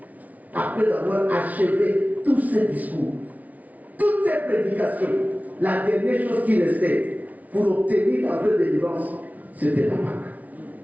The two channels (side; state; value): left; late; 0.072 ms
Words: après avoir achevé tous ses discours, toutes ses prédications, la dernière chose qui restait pour obtenir la vraie délivrance, c'était la Pâque.